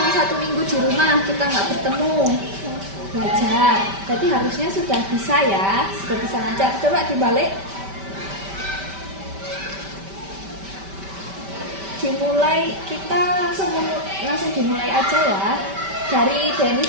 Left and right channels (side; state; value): left; late; 5.1 ms